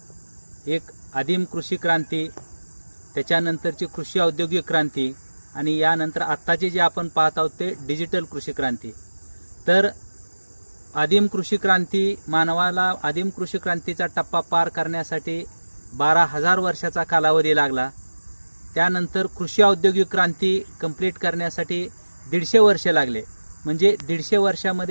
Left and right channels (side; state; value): both; inverted; correlation -1.00